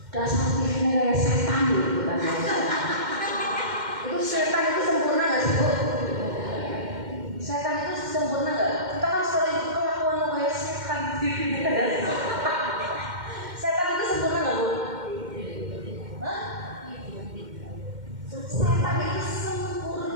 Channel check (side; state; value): left; late; 2.1 ms